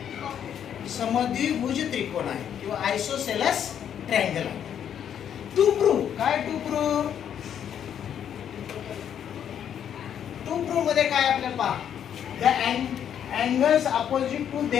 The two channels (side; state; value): right; quieter; 9.2 dB